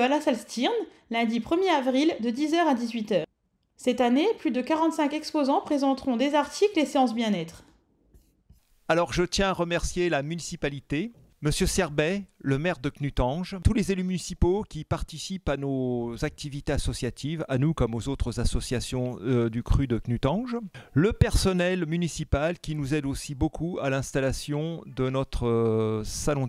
la salle Stirn lundi 1er avril de 10 h à 18 h. Cette année, plus de 45 exposants présenteront des articles et séances bien-être. Alors je tiens à remercier la municipalité, Monsieur Serbet, le maire de Knutange, tous les élus municipaux qui participent à nos activités associatives, à nous comme aux autres associations du cru de Knutange, le personnel municipal qui nous aide aussi beaucoup à l'installation de notre salon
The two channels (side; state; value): both; identical; correlation 1.00